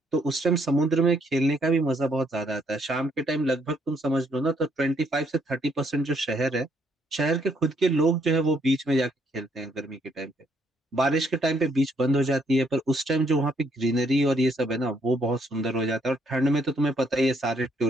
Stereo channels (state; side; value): normal; both; correlation 0.71